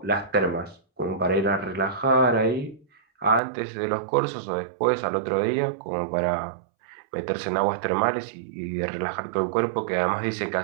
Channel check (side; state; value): left; drops out; at 3.4 s